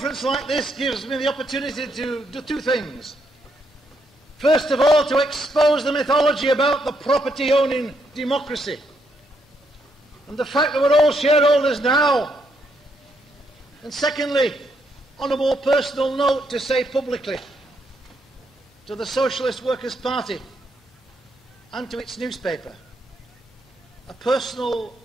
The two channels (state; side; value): normal; both; correlation 0.76